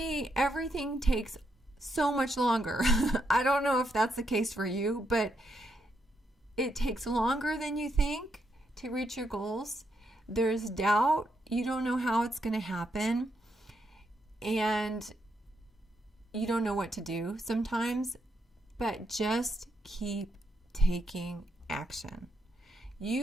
everything takes so much longer. I don't know if that's the case for you, but it takes longer than you think to reach your goals. There's doubt. You don't know how it's going to happen. And you don't know what to do sometimes, but just keep taking action.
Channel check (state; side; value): normal; both; correlation 0.79